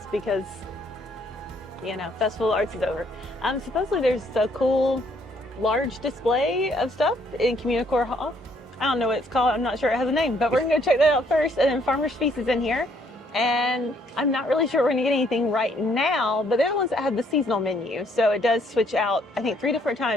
because, Festival of Arts is over, supposedly there's a cool large display of stuff in CommuniCore Hall. I don't know what it's called. I'm not sure it has a name, but we're going to go check that out first. And then Farmer's Feast is in here. And I'm not really sure we're going to get anything right now, but they're the ones that have the seasonal menu. So it does switch out, I think, 3 different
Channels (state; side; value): normal; both; correlation 0.67